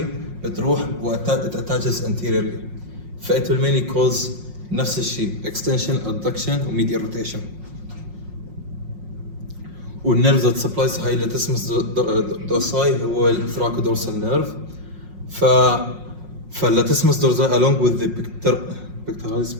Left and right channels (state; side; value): late; left; 5.5 ms